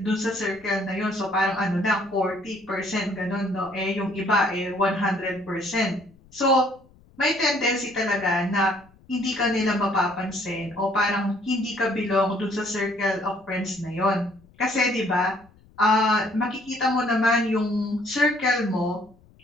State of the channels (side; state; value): left; noise; rumble, 28 dB below the sound